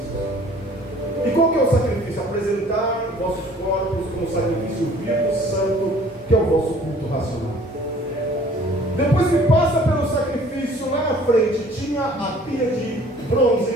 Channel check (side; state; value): both; normal; correlation 0.53